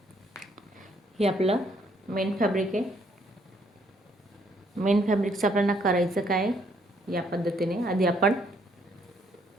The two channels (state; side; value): normal; both; correlation 0.68